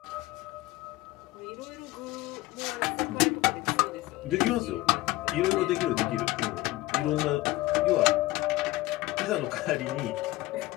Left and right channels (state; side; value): quieter; right; 18.7 dB